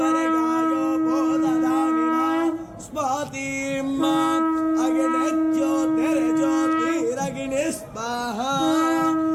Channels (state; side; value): identical; both; correlation 1.00